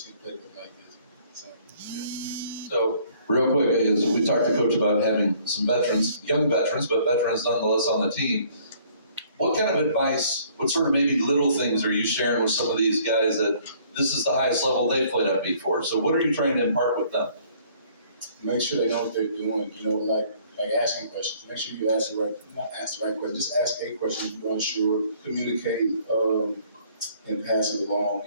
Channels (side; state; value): both; inverted; correlation -0.59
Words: like this. So real quick, as we talked to Coach about having some veterans, young veterans, but veterans nonetheless on the team. What kind of advice, what sort of maybe little things are you sharing with some of these guys that this is the highest level they've played at before? So what are you trying to impart with them? Make sure they know what they're doing. Like asking questions. Make sure you not ask the right question. Just ask a question if you're unsure. Communicate. And pass it